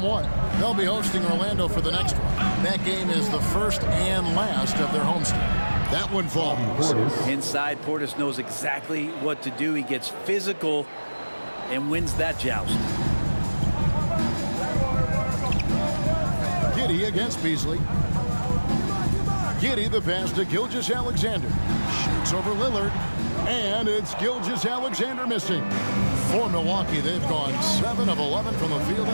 They'll be hosting Orlando for the next one. That game is the first and last of their homestand. That one falls. Inside, Portis knows exactly what to do. He gets physical and wins that joust. Giddey against Beasley. Giddey the pass to Gilgeous-Alexander. Shoots over Lillard. And it's Gilgeous-Alexander missing. For Milwaukee, they've gone 7 of 11 from the field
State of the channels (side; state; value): both; inverted; correlation -1.00